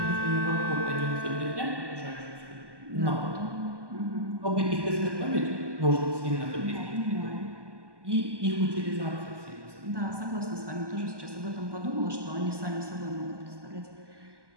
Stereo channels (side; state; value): left; late; 1.2 ms